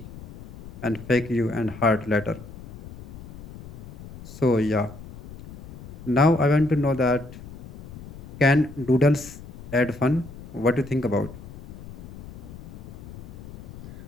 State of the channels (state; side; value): noise; left; rumble, 16 dB below the sound